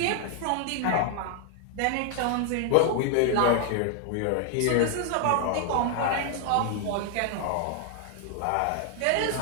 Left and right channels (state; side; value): different; both; correlation 0.00